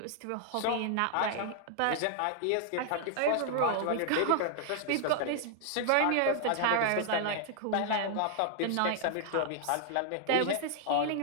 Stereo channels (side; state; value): both; different; correlation 0.00